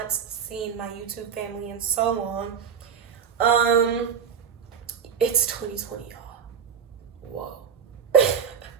seen my YouTube family in so long. It's 2020, y'all. Whoa.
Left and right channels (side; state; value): left; quieter; 7.3 dB